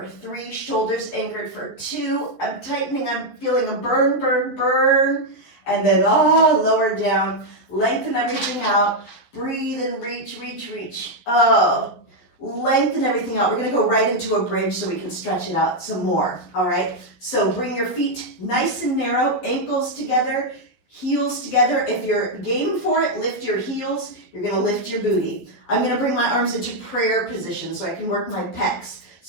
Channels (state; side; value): late; right; 12 ms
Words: 3, shoulders anchored. For 2, I'm tightening, I'm feeling a burn, burn, burn. And then, lower down, lengthen everything out. Breathe and reach, reach, reach. Lengthen everything out. We're going to go right into a bridge so we can stretch it out some more. All right. So bring your feet nice and narrow, ankles together, heels together. If you're game for it, lift your heels. You're going to lift your booty. I'm going to bring my arms into prayer position so I can work my pecs.